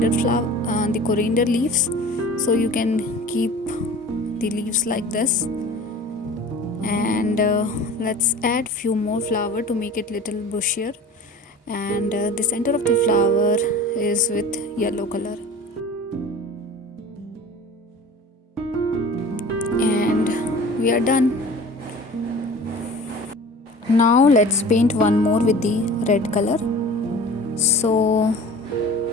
flower, the coriander leaves. So you can keep the leaves like this. And let's add few more flower to make it little bushier. And the center of the flower is with yellow color. And we are done. Now let's paint one more with the red color. So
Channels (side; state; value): both; normal; correlation 0.41